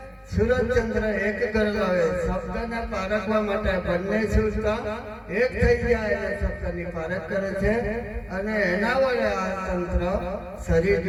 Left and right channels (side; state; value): both; identical; correlation 1.00